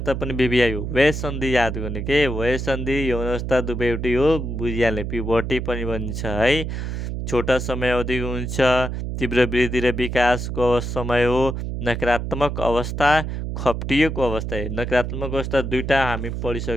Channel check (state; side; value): noise; right; hum, 4 dB below the sound